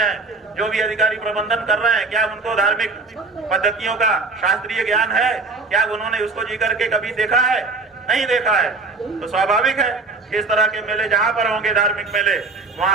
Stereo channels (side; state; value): left; quieter; 3.7 dB